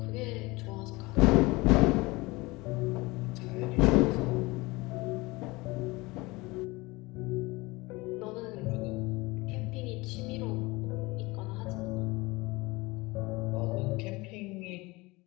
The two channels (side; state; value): right; quieter; 23.0 dB